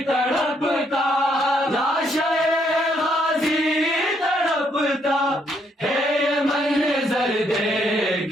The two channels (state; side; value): normal; both; correlation 0.72